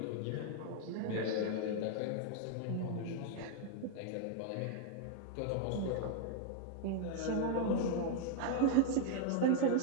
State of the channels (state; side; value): different; both; correlation 0.00